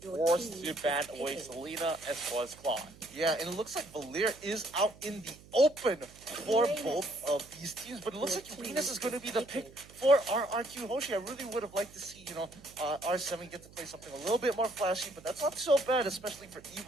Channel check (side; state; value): right; noise; hum, 22 dB below the sound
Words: forced to ban away Selena as well as Claude. Yeah, and it looks like Valir is out in the open for both of these teams, but it looks like Uranus is going to be the pick for RRQ Hoshi. I really would have liked to see, R7 get to play something a little bit more flashy, but that's not so bad, especially for